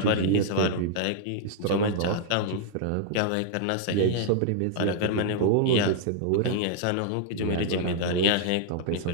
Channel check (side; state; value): both; different; correlation -0.01